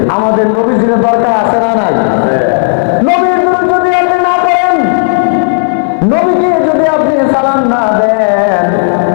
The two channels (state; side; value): silent; right; digital silence